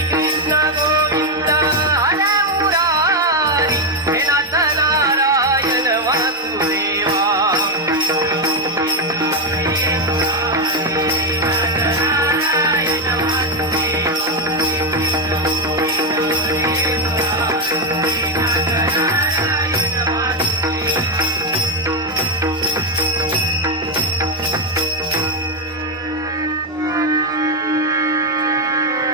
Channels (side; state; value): both; normal; correlation 0.06